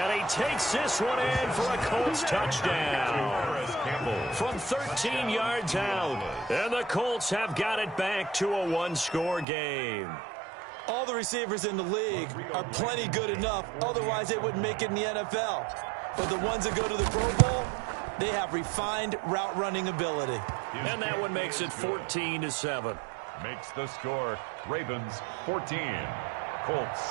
he takes this one in for a Colts touchdown. From 13 yards out. And the Colts have got it back to a 1-score game. All the receivers in the league are plenty good enough. Otherwise, they wouldn't make it in the NFL. But the ones that go to the Pro Bowl, they have refined route running ability. And that one makes it 14-7. Makes the score Ravens 14, Colts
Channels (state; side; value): drops out; left; at 9.5 s